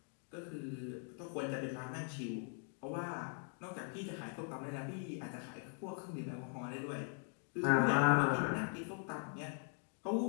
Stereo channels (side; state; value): right; silent; 50 dB below the other